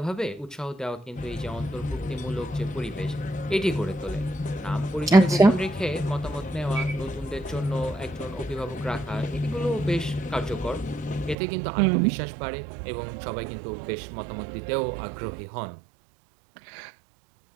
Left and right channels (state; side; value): drops out; left; at 11.4 s